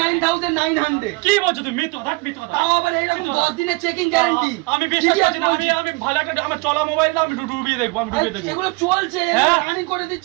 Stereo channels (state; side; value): quieter; left; 26.8 dB